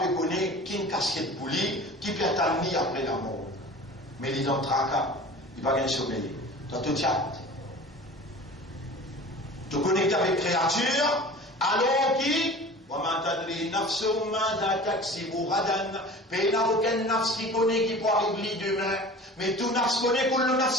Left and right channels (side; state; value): both; normal; correlation 0.40